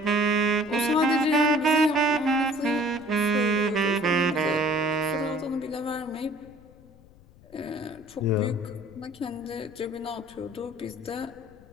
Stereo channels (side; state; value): left; noise; rumble, 24 dB below the sound